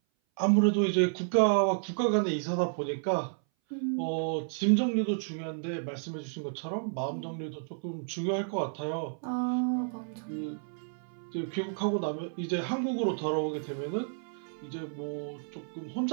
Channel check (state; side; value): silent; left; 57 dB below the other